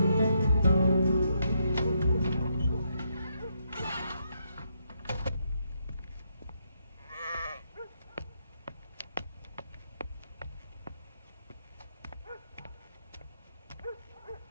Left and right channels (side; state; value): both; inverted; correlation -0.78